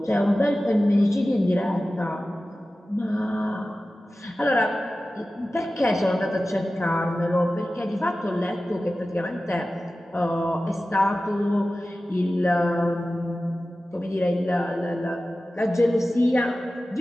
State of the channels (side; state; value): both; normal; correlation 0.95